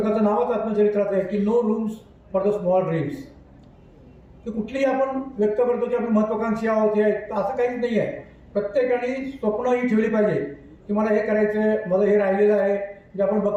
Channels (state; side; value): identical; both; correlation 1.00